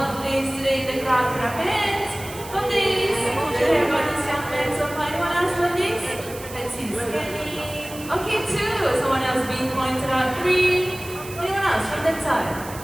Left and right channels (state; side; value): noise; right; hiss, 15 dB below the sound